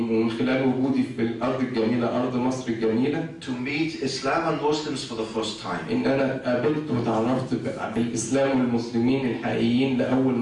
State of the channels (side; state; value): both; identical; correlation 1.00